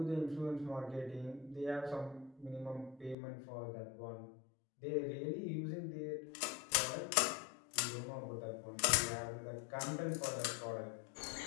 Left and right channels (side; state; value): right; drops out; at 3.2 s